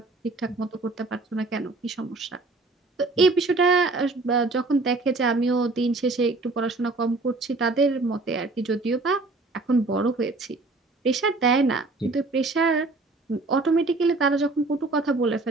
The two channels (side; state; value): left; quieter; 3.3 dB